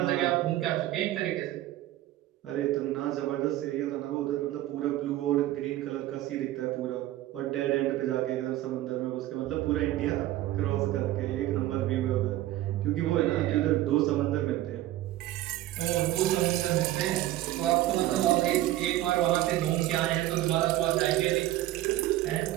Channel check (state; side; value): quieter; left; 15.0 dB